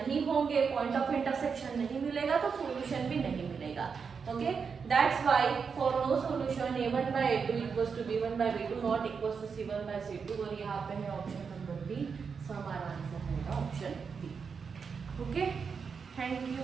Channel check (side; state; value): left; quieter; 5.8 dB